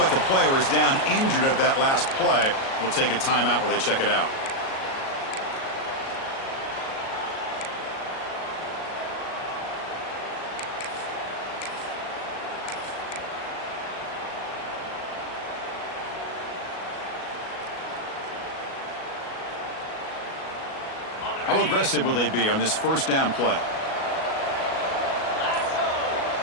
a player is down injured at that last play. We'll take a timeout where they check it out. How aggressive will they be on this first down play?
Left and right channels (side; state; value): right; late; 37 ms